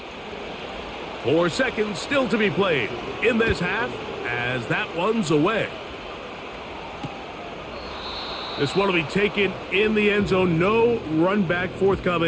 Four seconds still to be played in this half as that one's away. This one will be taken in the end zone. No run back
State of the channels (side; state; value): both; identical; correlation 1.00